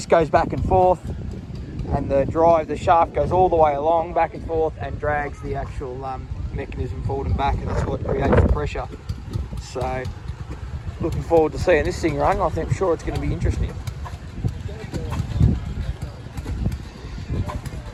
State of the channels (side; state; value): both; identical; correlation 1.00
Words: goes back and forth, and the shaft goes all the way along, back and forth, and drags the actual mechanism forward and back, and that's what creates the pressure. So looking forward to seeing this thing run. I'm sure it's going to be interesting.